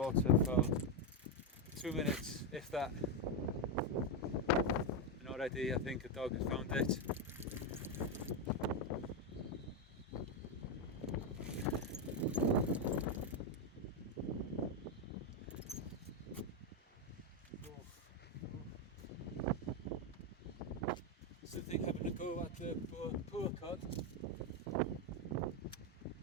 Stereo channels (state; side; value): normal; both; correlation 0.05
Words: for 2 minutes, if that. And already I think a dog has found it. Still think having a go at the poor cod.